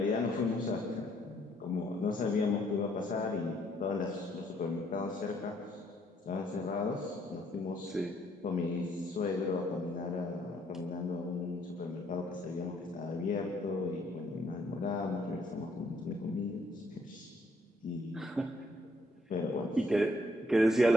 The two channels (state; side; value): normal; both; correlation 0.68